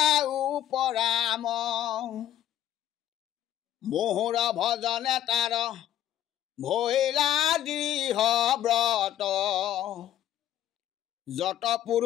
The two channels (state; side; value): quieter; right; 11.8 dB